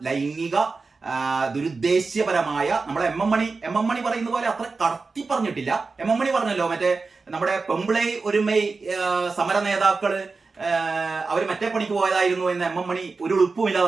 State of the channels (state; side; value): quieter; left; 4.2 dB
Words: ലൈംഗിക ദുരുദ്ദേശ്യപരമായ നമ്മളെ എം എം മണി പറയുന്ന പോലെ അത്ര കടത്തി പറഞ്ഞിട്ടില്ല. എം എം മണി പറഞ്ഞല്ലോ, മറ്റേ നമ്മുടെ പെമ്പിളൈ ഒരുമൈ സമര നേതാക്കള് അവർ മറ്റേ പണിക്ക് പോയതായിരുന്നു എന്ന് എം എം മണി ഒരു ഉളുപ്പുമില്ലാതെ